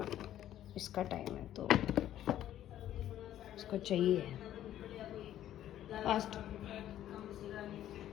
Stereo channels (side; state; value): right; quieter; 12.0 dB